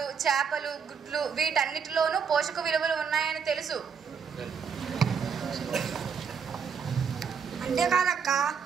చేపలు, గుడ్లు వీటన్నిటిలోనూ పోషక విలువలు ఉన్నాయని తెలుసు. అంతేకాదక్క,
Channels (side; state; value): left; quieter; 6.5 dB